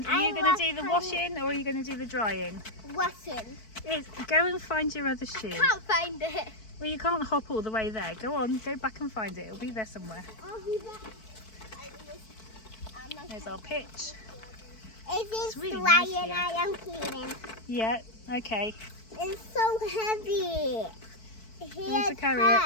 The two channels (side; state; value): right; late; 4.6 ms